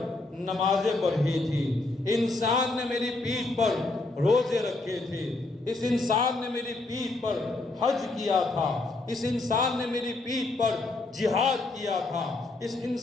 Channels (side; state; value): right; quieter; 3.2 dB